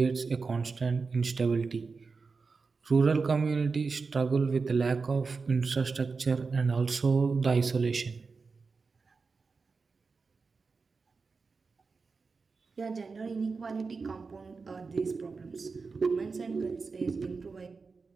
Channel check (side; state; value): left; quieter; 4.6 dB